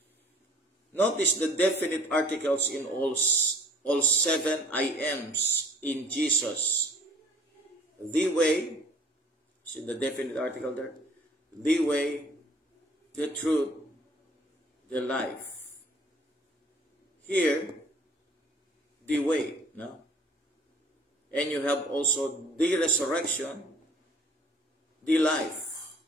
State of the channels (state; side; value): normal; both; correlation 0.53